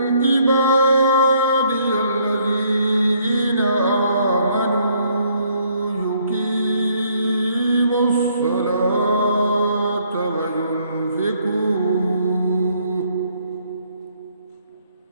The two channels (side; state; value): both; inverted; correlation -0.67